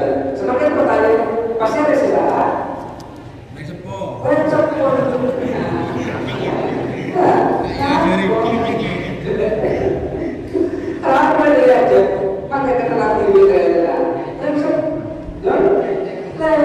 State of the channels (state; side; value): identical; both; correlation 1.00